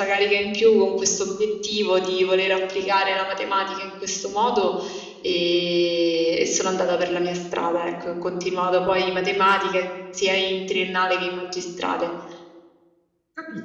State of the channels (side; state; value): both; identical; correlation 1.00